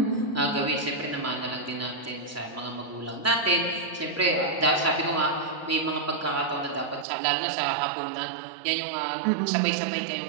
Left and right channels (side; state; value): left; drops out; at 7.1 s